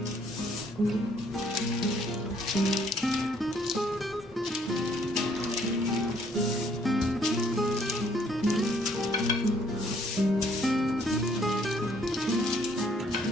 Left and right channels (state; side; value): normal; both; correlation 0.64